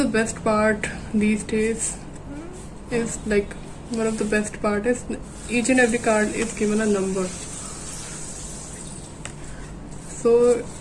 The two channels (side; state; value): both; identical; correlation 1.00